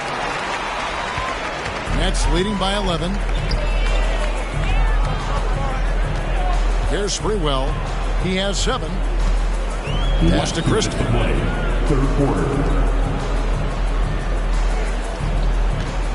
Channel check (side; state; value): both; identical; correlation 1.00